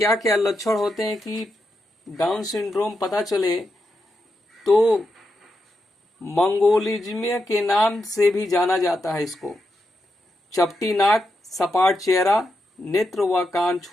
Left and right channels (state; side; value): normal; both; correlation 0.85